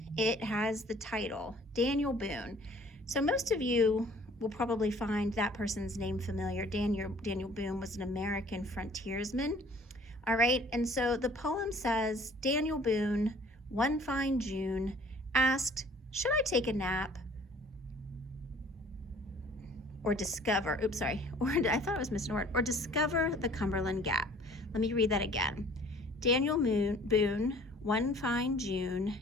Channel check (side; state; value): both; normal; correlation 0.53